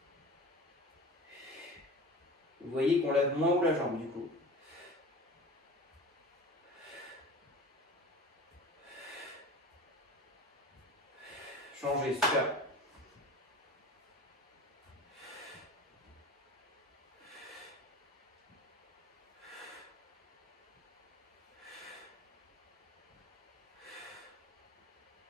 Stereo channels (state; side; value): normal; both; correlation 0.36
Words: Vous voyez qu'on lève moins haut la jambe du coup. Changez, super.